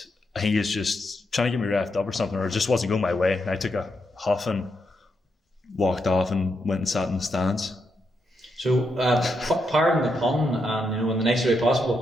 I think he was just trying to get me reffed up or something, or it just wasn't going my way. And I took a huff and walked off and went and sat in the stands. So, pardon the pun, and in the nicest way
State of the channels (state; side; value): normal; both; correlation 0.82